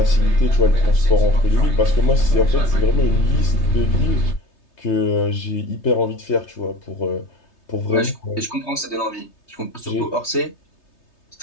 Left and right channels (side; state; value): right; late; 3.3 ms